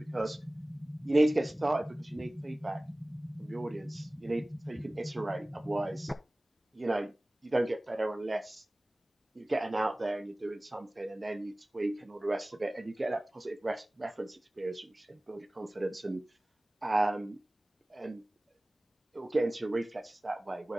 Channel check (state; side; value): normal; both; correlation 0.98